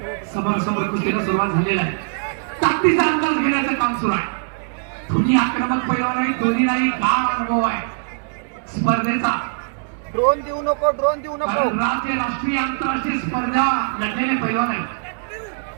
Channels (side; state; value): left; silent; 65 dB below the other